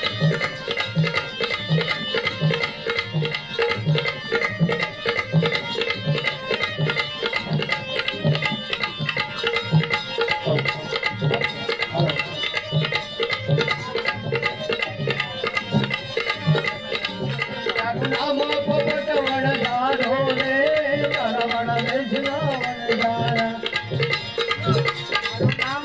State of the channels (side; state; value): left; noise; rumble, 24 dB below the sound